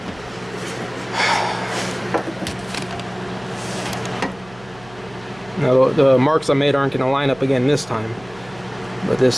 Now the marks I made aren't going to line up again this time, but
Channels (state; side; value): noise; right; hum, 22 dB below the sound